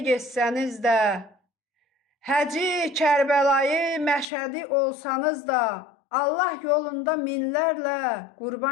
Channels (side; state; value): right; drops out; at 4.2 s